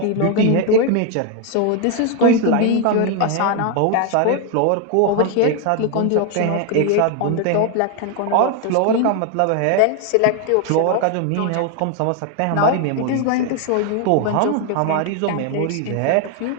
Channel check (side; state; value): both; different; correlation 0.01